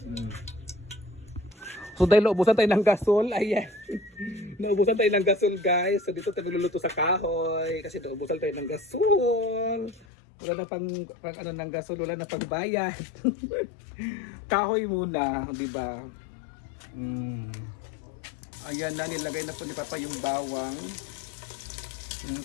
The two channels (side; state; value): right; drops out; at 10.1 s